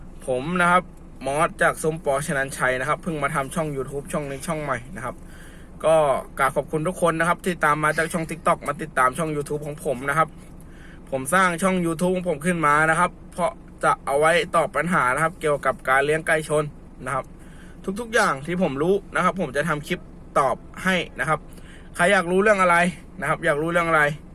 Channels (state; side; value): identical; both; correlation 1.00